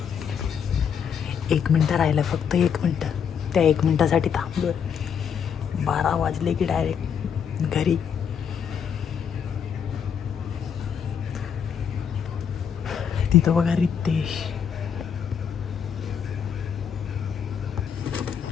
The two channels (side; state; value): right; quieter; 7.5 dB